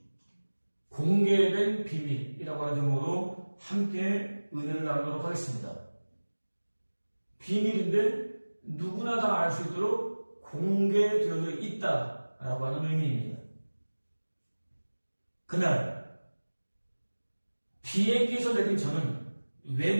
비밀이라고 하는 제목으로 함께 은혜를 나누도록 하겠습니다. 비밀인데 누구나 다 알 수 있도록 공개되어져 있다라고 하는 의미입니다. 그날 비행기에서 내린 저는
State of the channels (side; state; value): both; inverted; correlation -1.00